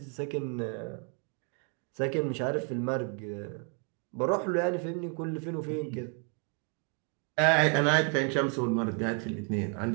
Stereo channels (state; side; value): quieter; left; 38.1 dB